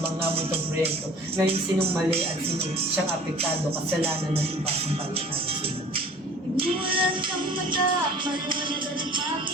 muntong proyekto. Ngayon sinong mali at sinong siyang apektado, kasalanan ng iba sa palitan sila. Imulat ang mata, maliwanagan at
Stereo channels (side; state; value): both; normal; correlation 0.47